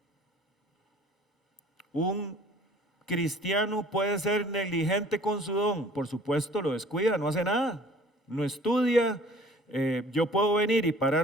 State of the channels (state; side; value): normal; both; correlation 0.51